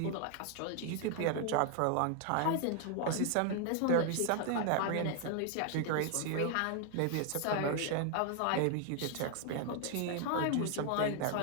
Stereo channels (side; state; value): both; different; correlation 0.00